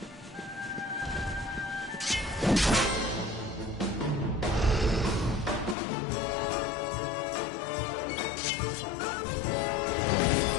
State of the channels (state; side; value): drops out; right; at 5.8 s